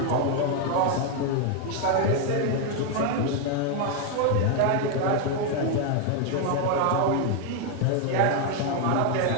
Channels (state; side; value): different; both; correlation 0.01